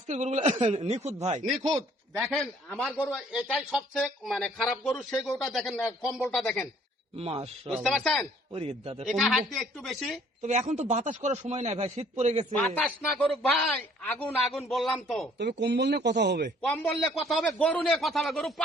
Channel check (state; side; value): normal; both; correlation 0.59